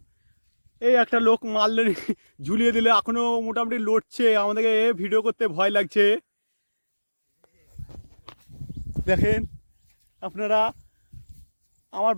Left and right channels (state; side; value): inverted; both; correlation -1.00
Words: এই একটা লোক মারলে ঝুলিয়ে দিলে এখনো মোটামুটি লড়ছে। আমাদেরকে ভিডিও করতে ভয় লাগছে। দেখেন আপনারা, আমার